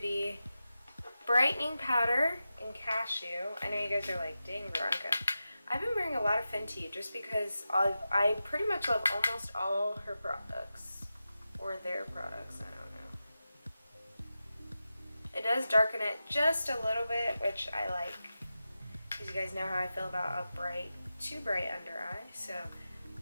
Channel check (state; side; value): inverted; both; correlation -0.92